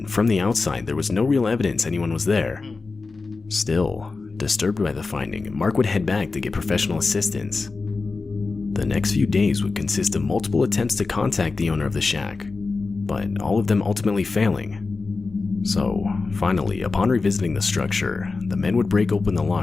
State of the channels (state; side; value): quieter; right; 4.0 dB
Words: from the outside there was no real evidence anyone was there. Still, disturbed by the finding, Mark would head back to get professional assistance. The next few days would consist of multiple attempts to contact the owner of the shack, but all of them ultimately failing. So, finally, upon revisiting the structure, the men would break open the